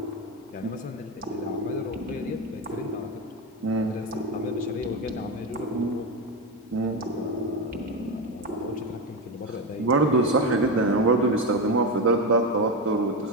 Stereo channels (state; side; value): normal; both; correlation 0.14